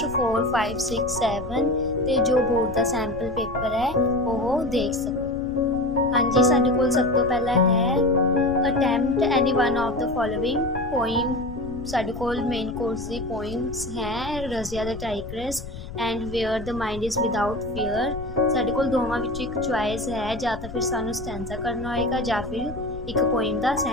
4, 5, 6, 7 ਤੇ ਜੋ ਬੋਰਡ ਦਾ ਸੈਂਪਲ ਪੇਪਰ ਹੈ ਉਹ ਦੇਖ ਸਕੋ। ਹਾਂਜੀ, ਸਾਡੇ ਕੋਲ ਸਭ ਤੋਂ ਪਹਿਲਾਂ ਹੈ attempt any one of the following poem. ਸਾਡੇ ਕੋਲ ਮੇਨ ਕੋਰਸ ਦੀ ਪੋਇਮਸ ਹੈ Razia the tigress and where the mind is without fear. ਸਾਡੇ ਕੋਲ ਦੋਵਾਂ ਵਿੱਚੋਂ ਇੱਕ ਚੁਆਇਸ ਹੈ, ਜਾਂ ਤਾਂ ਫਿਰ ਸਾਨੂੰ ਸਟੈਂਜ਼ਾ ਕਰਨਾ ਹੋਏਗਾ ਜਾਂ ਫਿਰ ਇੱਕ ਪੋਇਮ ਦਾ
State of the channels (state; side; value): noise; left; rumble, 12 dB below the sound